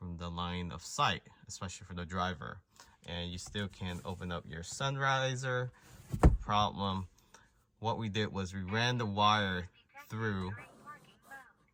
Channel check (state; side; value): identical; both; correlation 1.00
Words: the line of sight, especially for the driver. And you still can open up your sun visor, no problem. What we did was we ran the wire through.